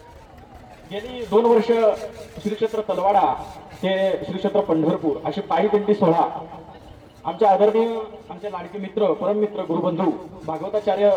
गेली 2 वर्ष श्री क्षेत्र तलवाडा ते श्री क्षेत्र पंढरपूर अशी पायी दिंडी सोहळा आमचे आदरणीय आमचे लाडके मित्र परममित्र गुरुबंधू भागवताचार्य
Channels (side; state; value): both; identical; correlation 1.00